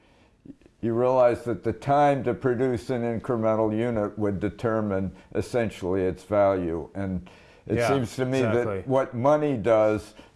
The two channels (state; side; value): identical; both; correlation 1.00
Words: you realize that the time to produce an incremental unit would determine essentially its value. And it seems to me that what money does